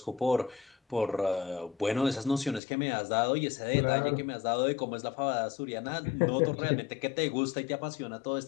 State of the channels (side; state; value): right; drops out; at 2.6 s